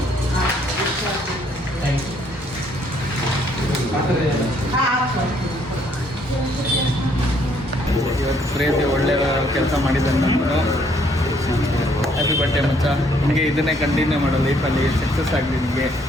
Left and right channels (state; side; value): normal; both; correlation 0.66